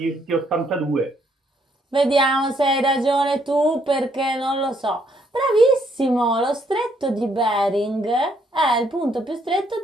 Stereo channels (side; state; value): both; normal; correlation 0.71